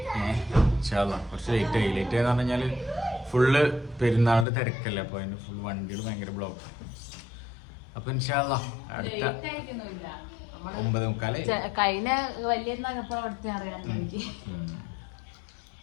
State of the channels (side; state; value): right; drops out; at 4.5 s